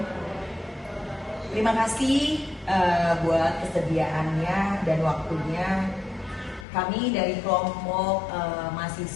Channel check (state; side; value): drops out; right; at 6.7 s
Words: Terima kasih buat kesediaannya dan waktunya. Kami dari kelompok